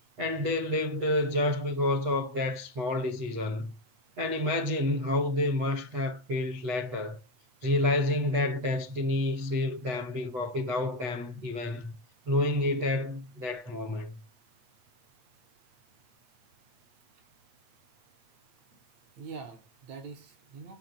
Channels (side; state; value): left; late; 8.1 ms